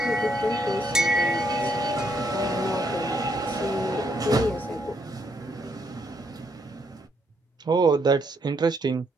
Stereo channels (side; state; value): both; normal; correlation 0.74